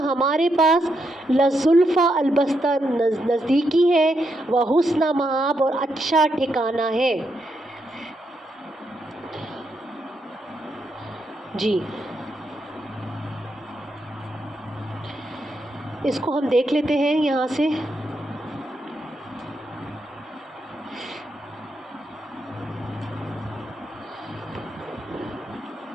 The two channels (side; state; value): both; normal; correlation 0.81